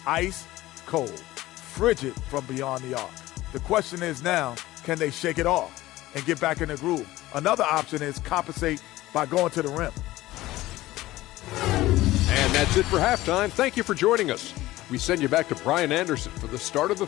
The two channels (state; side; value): quieter; right; 17.1 dB